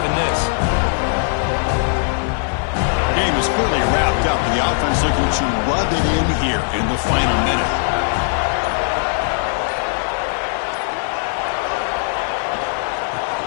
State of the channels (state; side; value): silent; right; 58 dB below the other